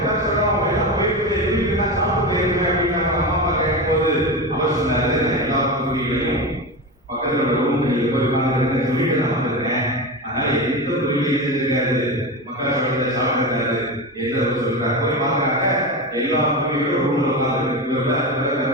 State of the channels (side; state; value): both; normal; correlation 0.21